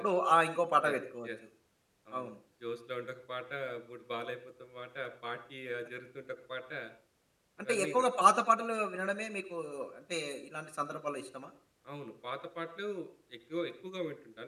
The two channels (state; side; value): identical; both; correlation 1.00